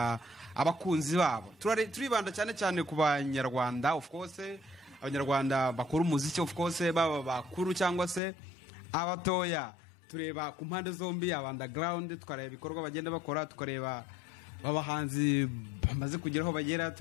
abakunzi babo. Turibanda cyane cyane ku banyarwanda, of course abanyarwanda bakora umuziki, of course baba bakuru cyangwa se abatoya. Tureba ku mpande zombi, underground tukareba ibikorwa bagenda bakora, tukareba abahanzi bamaze kugeraho bagera,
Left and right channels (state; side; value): drops out; right; at 8.2 s